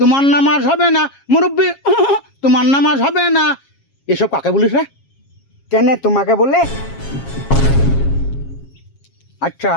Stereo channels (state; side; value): late; right; 7.4 ms